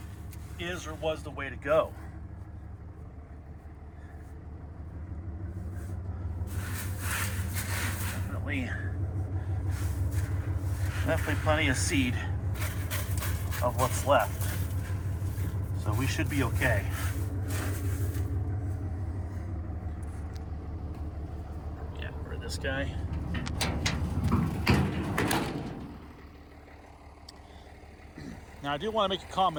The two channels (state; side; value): identical; both; correlation 1.00